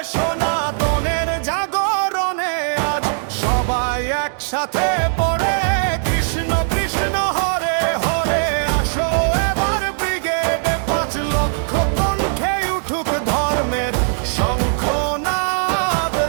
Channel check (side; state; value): left; silent; digital silence